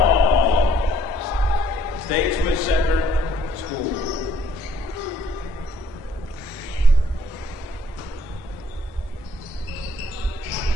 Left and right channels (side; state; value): both; normal; correlation 0.64